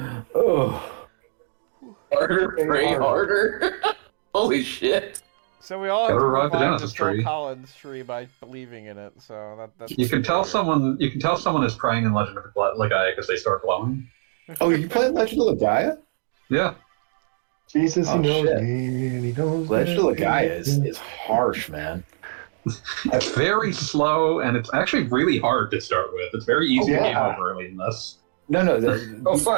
Oh, Harder, pray harder. Holy shit. So we all have to Gotta revive the revive the Genesis Phil tree. Collins tree by believing in it. So that's You can tell someone is praying in Legend of Legaia because they start glowing. oh, you playing Legend of Legaia? Yeah. Jesus, he Oh, knows shit. me, and he knows Legend of that Legaia he- is harsh, man. It's very slow, and it's actually really hard to start with. It's very easy to game yeah. over early in this. No, Oh,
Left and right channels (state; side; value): silent; left; digital silence